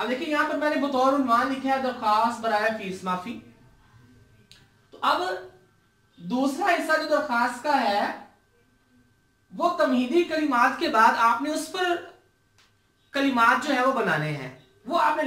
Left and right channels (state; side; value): identical; both; correlation 1.00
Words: देखिए यहां पर मैंने बतौर उन्वान लिखा है दरख्वास्त बराए फीस माफी। तो अब दूसरा हिस्सा जो दरख्वास्त का है वो तमहीदी कलिमात के बाद आपने उस पर कलिमात जो है वो बनाने हैं, वो आपने